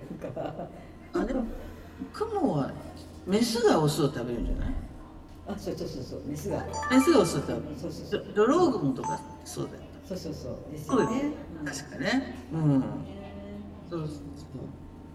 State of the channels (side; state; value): both; identical; correlation 1.00